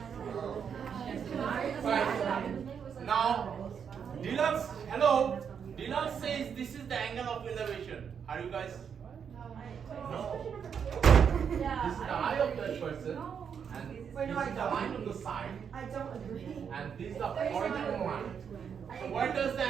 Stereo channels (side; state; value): left; quieter; 7.3 dB